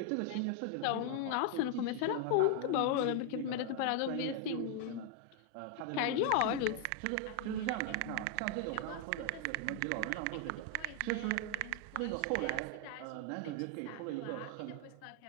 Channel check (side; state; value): both; different; correlation 0.00